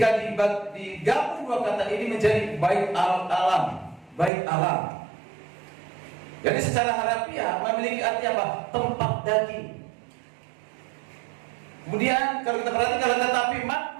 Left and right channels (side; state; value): left; drops out; at 4.3 s